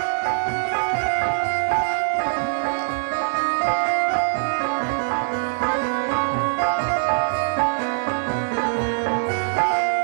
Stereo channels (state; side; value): silent; left; 64 dB below the other